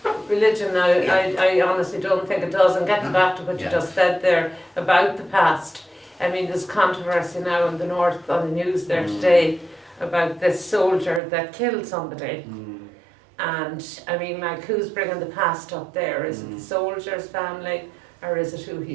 Religion now, I honestly don't think it does. And getting back to what you Yeah. just said there about the past, I mean, there's controversy now in the north on the news there today about this soldier that killed somebody. And I mean, like, who's bringing the past up there? Is it the soldier's family, or is it who he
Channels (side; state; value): left; drops out; at 11.2 s